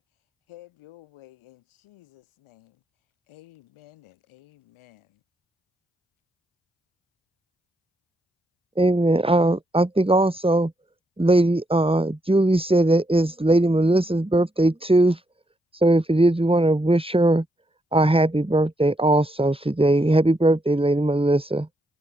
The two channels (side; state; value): both; normal; correlation 0.78